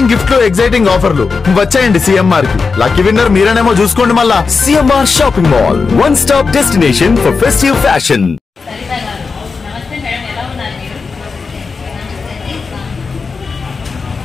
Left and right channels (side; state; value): right; quieter; 4.8 dB